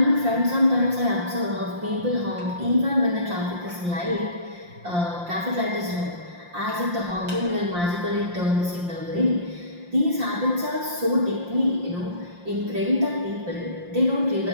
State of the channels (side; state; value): left; late; 5.7 ms